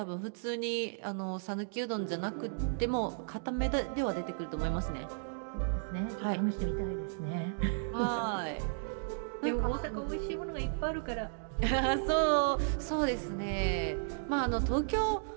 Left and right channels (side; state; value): left; silent; digital silence